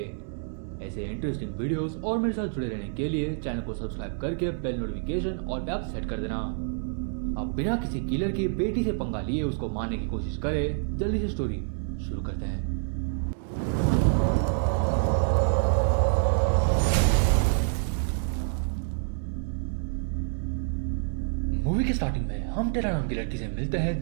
ऐसे इंटरेस्टिंग वीडियोस और मेरे साथ जुड़े रहने के लिए चैनल को सब्सक्राइब करके बेल नोटिफिकेशन और बेल सेट कर देना। अब बिना किसी किलर की बेटी से पंगा लिए उसको मारने की कोशिश करे। जल्दी से स्टोरी शुरू करते हैं। मूवी के स्टार्टिंग में हम टेरा नाम की लड़की से मिलते हैं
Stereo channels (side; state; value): left; silent; 60 dB below the other